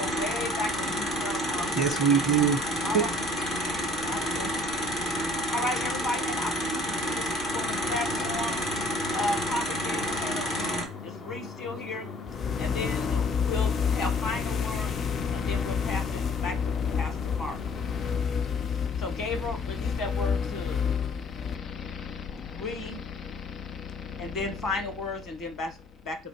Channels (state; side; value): normal; both; correlation 0.52